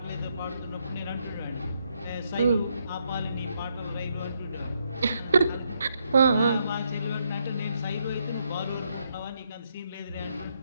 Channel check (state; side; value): inverted; both; correlation -0.77